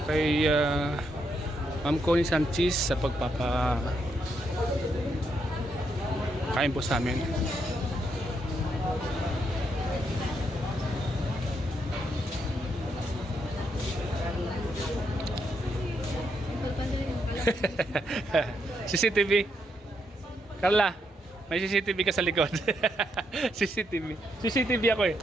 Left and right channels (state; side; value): normal; both; correlation 0.78